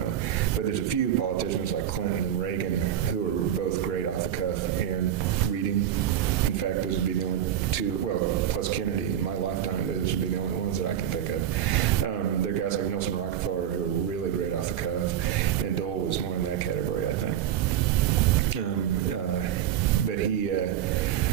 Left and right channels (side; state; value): left; quieter; 10.3 dB